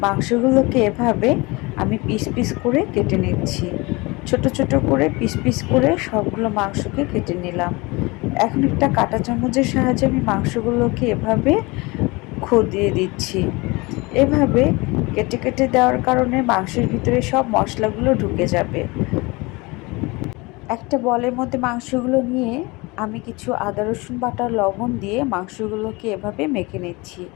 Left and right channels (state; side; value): quieter; right; 24.7 dB